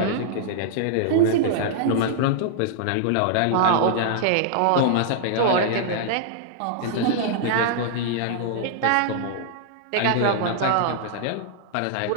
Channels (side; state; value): both; different; correlation -0.01